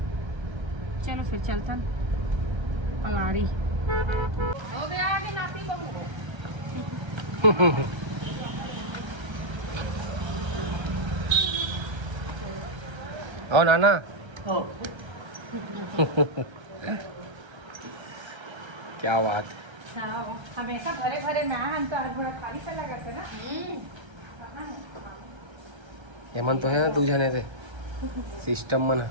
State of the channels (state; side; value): late; left; 1.3 ms